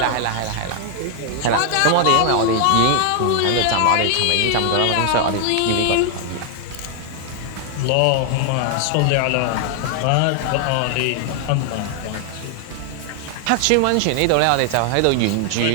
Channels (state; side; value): different; both; correlation 0.00